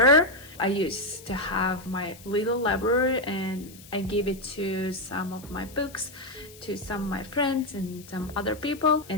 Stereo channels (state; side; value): noise; left; hiss, 20 dB below the sound